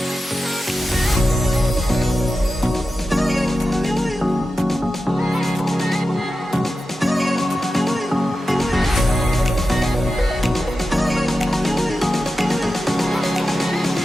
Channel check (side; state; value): both; normal; correlation 0.92